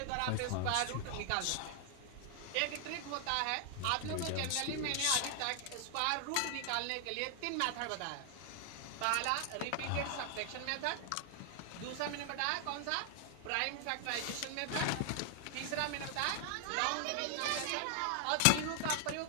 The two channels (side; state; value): both; different; correlation 0.00